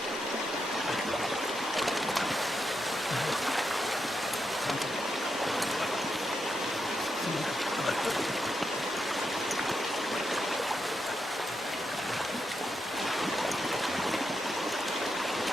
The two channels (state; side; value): normal; both; correlation 0.84